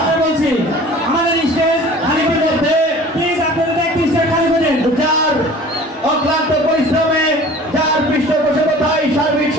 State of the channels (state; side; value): normal; both; correlation 0.45